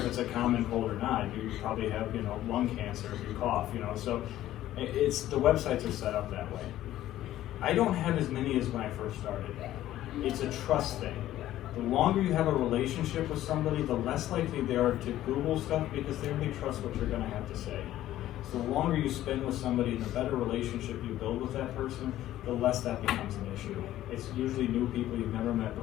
it's a common cold or not. You probably have, you know, lung cancer if you cough. You know, so it's the websites are set up that way. I don't have as many as when I first started. It's a trust thing. The longer you have a relationship with somebody, the less likely they are to Google stuff because they already trust what you're going to have to say. So the longer you spend with somebody and the better relationship you build with that person, the less that becomes an issue. It's usually new people you've never met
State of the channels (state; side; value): quieter; right; 13.7 dB